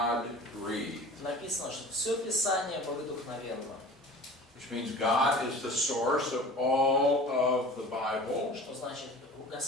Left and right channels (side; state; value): both; normal; correlation 0.40